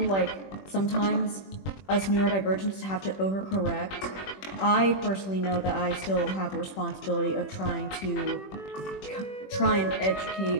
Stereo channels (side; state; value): right; late; 21 ms